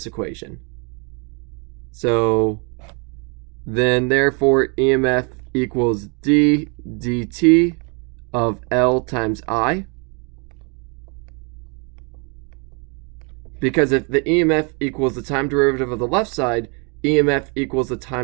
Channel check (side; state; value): left; quieter; 34.5 dB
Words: equation. So then therefore EMF equals d dt of L times I. Because if the EMF equals the time derivative of the left side, EMF equals the